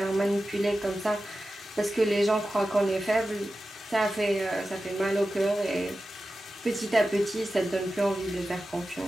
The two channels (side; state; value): both; normal; correlation 0.93